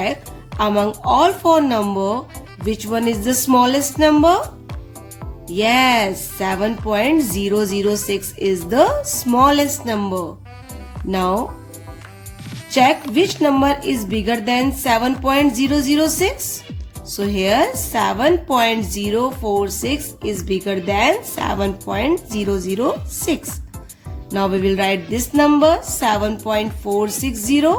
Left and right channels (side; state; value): both; identical; correlation 1.00